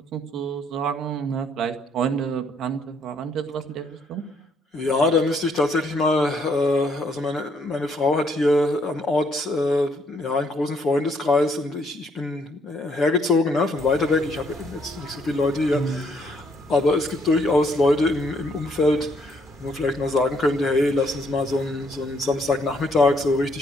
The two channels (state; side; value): normal; both; correlation 0.69